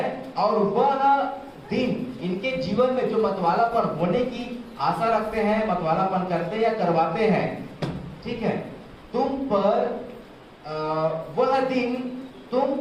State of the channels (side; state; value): both; identical; correlation 1.00